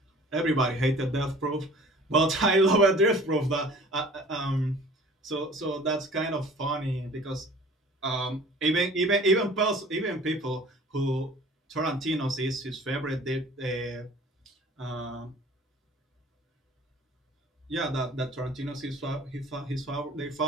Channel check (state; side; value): normal; both; correlation 0.48